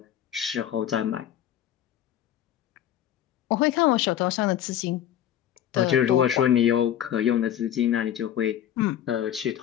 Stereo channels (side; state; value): right; quieter; 10.9 dB